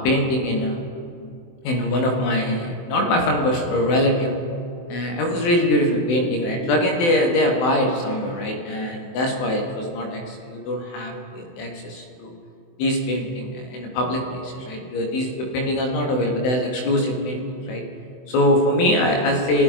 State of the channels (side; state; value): right; late; 24 ms